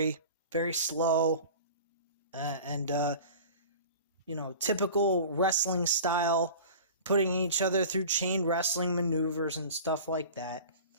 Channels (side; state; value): both; inverted; correlation -0.39